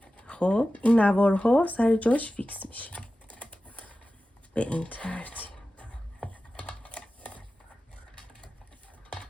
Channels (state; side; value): normal; both; correlation 0.94